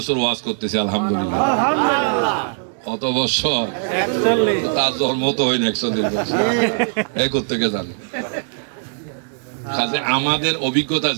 ওয়াজ করতেছি আলহামদুলিল্লাহ। কত বছর? তার জন্ম তো হয়নি 41 বছর, এই কোত্থেকে জানি। আমাদের অভিজ্ঞতা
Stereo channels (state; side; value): silent; left; digital silence